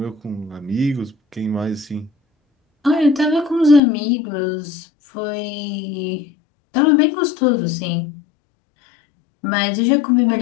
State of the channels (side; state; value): right; drops out; at 3.8 s